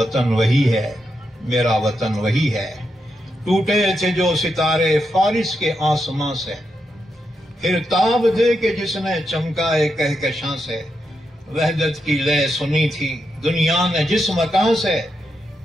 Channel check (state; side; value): normal; both; correlation 0.84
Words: वही है, मेरा वतन वही है। टूटे थे जो सितारे फारिस के आसमां से, फिर ताब दे के जिसने चमकाए कहकशां से, वहदत की लय सुनी थी दुनिया ने जिस मकान से,